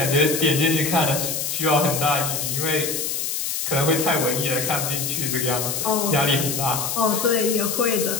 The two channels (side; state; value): left; noise; hiss, 2 dB below the sound